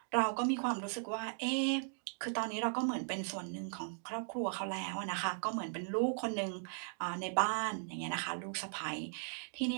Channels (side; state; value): left; silent; digital silence